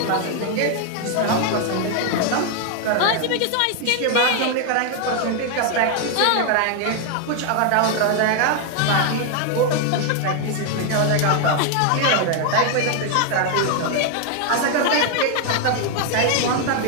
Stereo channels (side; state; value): both; different; correlation 0.00